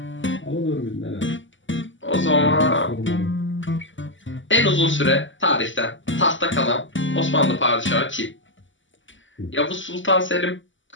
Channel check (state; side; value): late; right; 0.55 ms